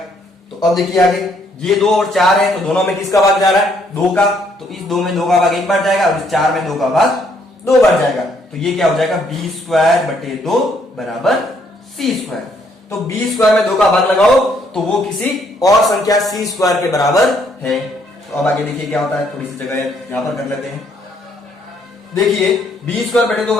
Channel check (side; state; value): both; normal; correlation 0.69